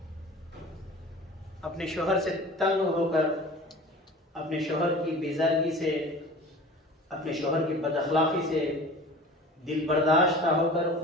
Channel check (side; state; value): both; normal; correlation 0.40